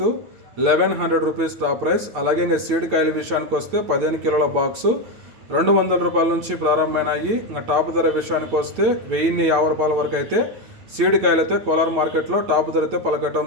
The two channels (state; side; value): late; left; 9.3 ms